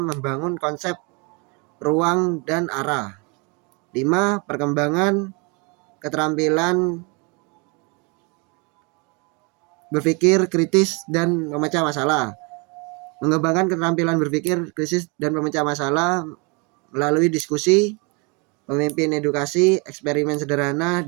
membangun konsep ruang dan arah. 5. Perkembangan keterampilan berpikir kritis dan memecah masalah. Mengembangkan keterampilan berpikir kritis dan memecah masalah melalui diskusi, pemimpin edukasi, eksperimen sederhana,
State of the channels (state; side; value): quieter; left; 31.2 dB